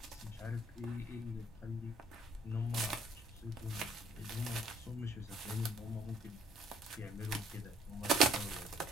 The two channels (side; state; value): both; normal; correlation 0.62